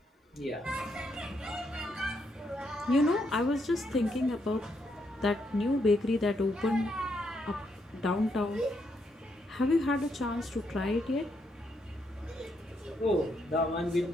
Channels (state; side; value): normal; both; correlation 0.77